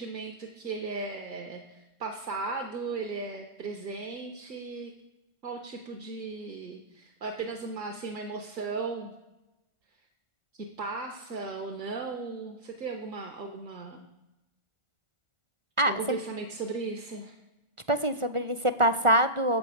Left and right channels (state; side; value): late; left; 1.4 ms